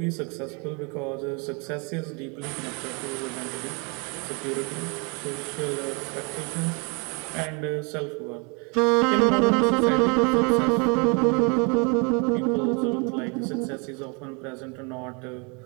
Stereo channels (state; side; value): quieter; left; 32.5 dB